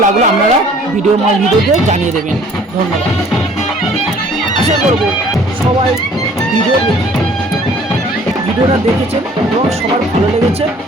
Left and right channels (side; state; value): both; normal; correlation 0.54